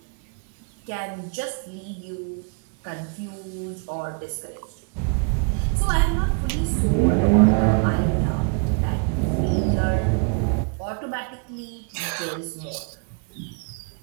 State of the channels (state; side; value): quieter; left; 39.1 dB